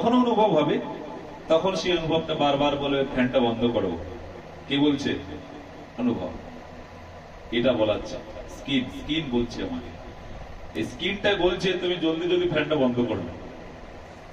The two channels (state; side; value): identical; both; correlation 1.00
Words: অনুভব হবে। তখন সেই অনুভবটা বারবার বলে ফ্যানটা বন্ধ করো। কি বলছে? অনুভব। এটা বলাচ্ছে স্কিন বলছে আমাকে, এই স্কিনটা বলছে তুমি জলদি জলদি ফ্যানটা বন্ধ করো।